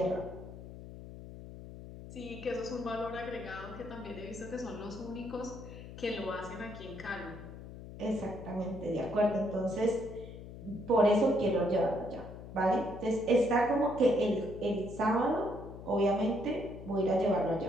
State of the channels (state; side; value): noise; left; hum, 13 dB below the sound